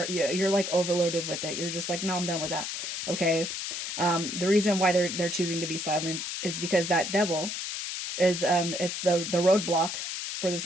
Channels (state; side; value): noise; left; hiss, 4 dB below the sound